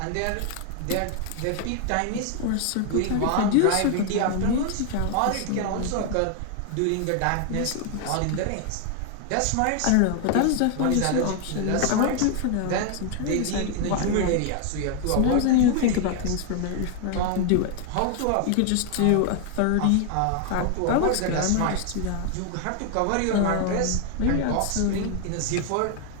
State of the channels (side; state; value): both; different; correlation 0.00